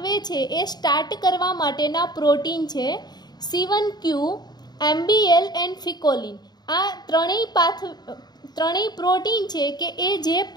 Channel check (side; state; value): right; late; 0.20 ms